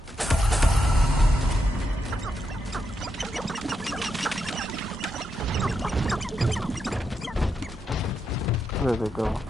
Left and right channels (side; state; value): both; normal; correlation 0.83